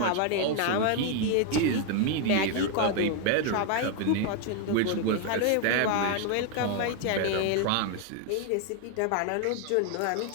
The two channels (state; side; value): different; both; correlation 0.01